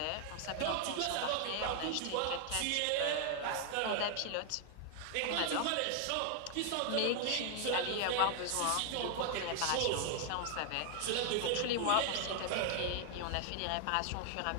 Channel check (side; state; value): both; different; correlation 0.00